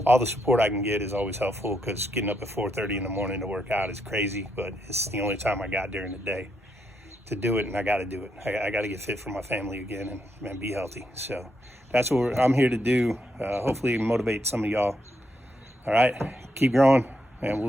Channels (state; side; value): normal; both; correlation 0.79